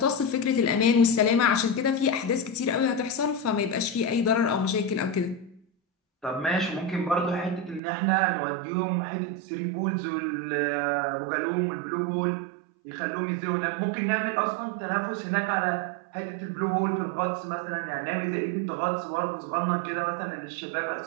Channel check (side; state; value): left; drops out; at 7.8 s